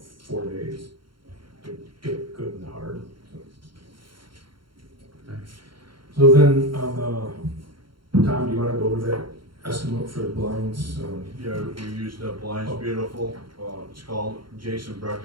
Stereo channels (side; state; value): left; late; 0.73 ms